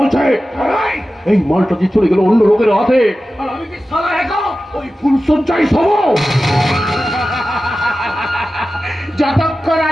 এই মালটা যে চলে গেল অন্য লোকের হাতে, আর আমি কি সালা একা ওই ফুল সজ্জাই সব। যতক্ষণ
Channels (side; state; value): both; normal; correlation 0.94